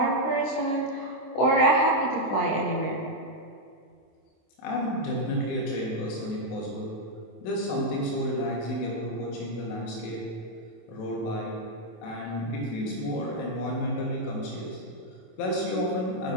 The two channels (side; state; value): right; late; 27 ms